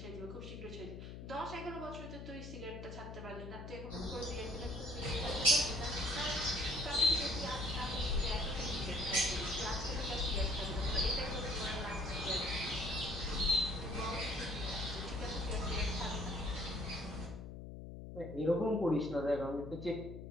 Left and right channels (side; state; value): left; noise; hum, 10 dB below the sound